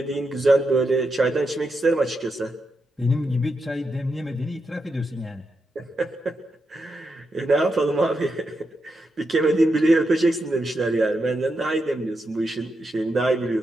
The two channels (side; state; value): both; normal; correlation 0.85